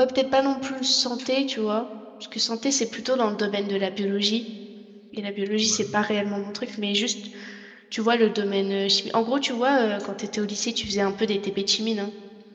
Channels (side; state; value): both; identical; correlation 1.00